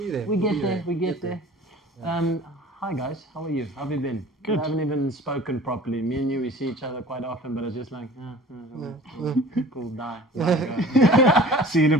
there. We get there. We get there. Hi guys, how are you? How have you been? Good. We haven't even spoken properly. Me and you, we see each other quite often, but it's just like, cool, die. Go. See in a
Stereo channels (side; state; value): both; normal; correlation 0.45